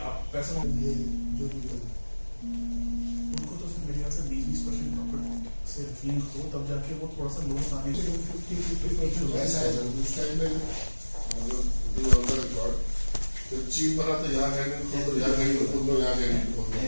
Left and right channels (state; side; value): inverted; both; correlation -1.00